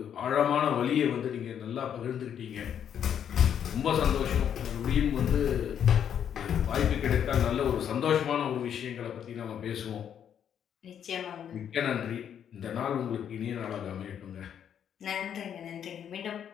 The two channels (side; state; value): right; quieter; 8.9 dB